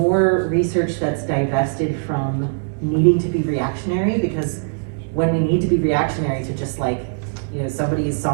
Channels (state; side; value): silent; left; digital silence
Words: research that's divested from needing to be reactionary, because when we need to be reactionary to just somebody is